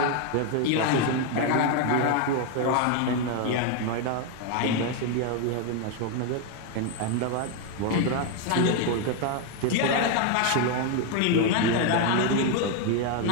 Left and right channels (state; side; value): different; both; correlation 0.01